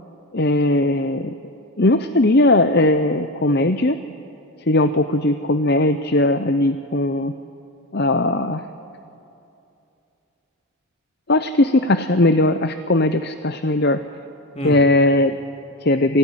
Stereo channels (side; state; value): both; normal; correlation 0.20